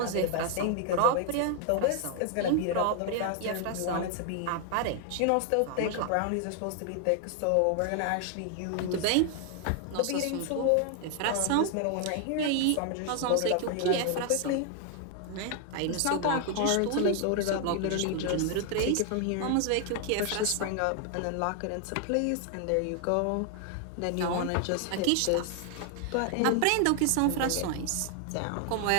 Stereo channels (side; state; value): both; different; correlation 0.00